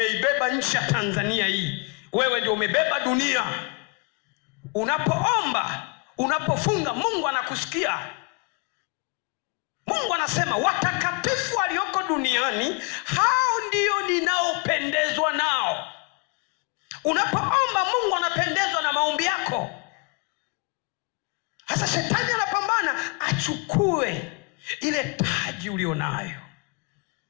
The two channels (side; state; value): right; quieter; 33.1 dB